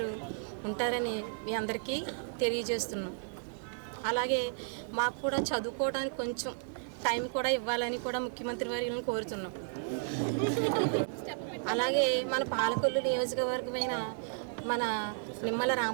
ఉంటారని మీ అందరికీ తెలియజేస్తున్నాం. అలాగే మాకు కూడా చదువుకోవడానికి కొంచెం టైం కూడా ఇవ్వాలని కూడా ముఖ్యమంత్రి వారిని కోరుతున్నాం. అలాగే మన పాలకొల్లు నియోజకవర్గమైన మన నిమ్మల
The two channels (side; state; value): left; silent; digital silence